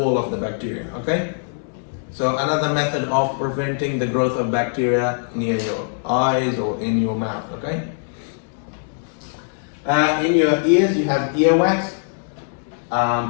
of the bacteria, okay? So another method of preventing the growth of bacteria near your eyes or in your mouth, okay? In your ears you have earwax,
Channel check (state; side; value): silent; right; digital silence